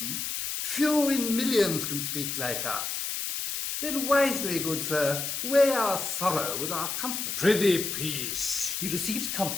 few in millions can speak like us. Then wisely, good sir, weigh our sorrow with our comfort. Prithee, peace. He receives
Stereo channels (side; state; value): left; noise; hiss, 3 dB below the sound